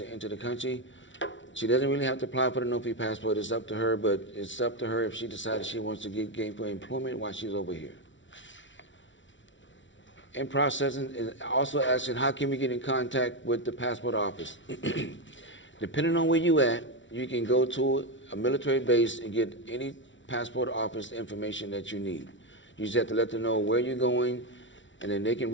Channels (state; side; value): late; right; 0.55 ms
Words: enter the country. She doesn't really have to apply for the no-fee passport. It's up to her, but it's up to her if she decides she wants to get gainful employment while she's over here. In processing, is also asking, how can we get in contact with the passport office? Depending on where you at, you can go to a military base and get any passport office information that you need. You just have to let them know where you're going, and then they can